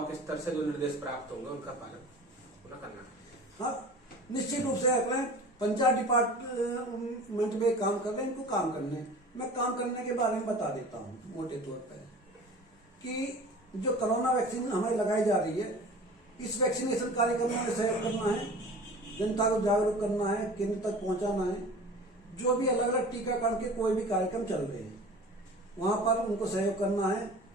स्तर से जो निर्देश प्राप्त होंगे उनका पालन पूरा करना। हाँ, निश्चित रूप से अगले पंचायत डिपार्टमेंट में काम कर रहे हैं, इनको काम करने हैं। मैं काम करने के बारे में बता देता हूँ मोटे तौर पर कि जो कोरोना वैक्सीन हमें लगाई जा रही है, इस वैक्सीनेशन कार्यक्रम में सहयोग करना है, जनता को जागरूक करना है, केंद्र तक पहुंचाना है। जो भी अलग अलग टीकाकरण के कोई भी कार्यक्रम चल रहे हैं वहां पर उनको सहयोग करना है।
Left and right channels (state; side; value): normal; both; correlation 0.40